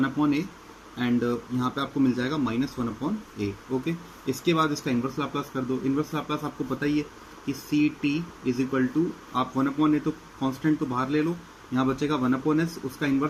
and यहाँ पे आपको मिल जाएगा -1/a। ओके, इसके बाद इसका इन्वर्स लाप्लास कर दो। इन्वर्स लाप्लास आपको पता ही है कि ct = आप 1/a तो कांस्टेंट तो बाहर ले लो, यहाँ बचेगा 1/s, उसका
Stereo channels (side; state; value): both; identical; correlation 1.00